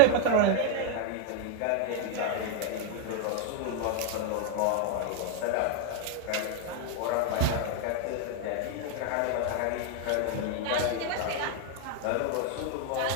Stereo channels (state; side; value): different; both; correlation 0.01